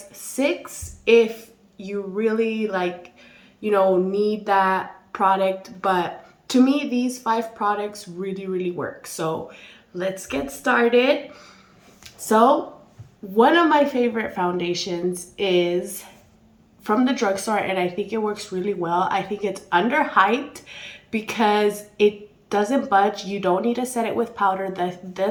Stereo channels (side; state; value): both; identical; correlation 1.00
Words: 6 if you really need that product, but to me these 5 products really work. So let's get started. So one of my favorite foundations is from the drugstore, and I think it works really well. I think it's underhyped because it doesn't budge. You don't need to set it with powder.